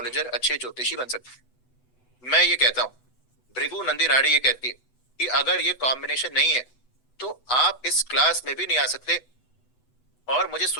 अच्छे ज्योतिषी बन सकते हैं। मैं ये कहता हूँ, भृगु नंदी नाड़ी ये कहती है कि अगर ये कॉम्बिनेशन नहीं है तो आप इस क्लास में भी नहीं आ सकते और मुझे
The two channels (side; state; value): right; late; 8.0 ms